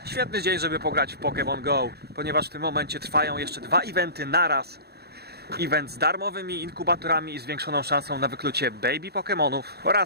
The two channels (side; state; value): left; late; 0.47 ms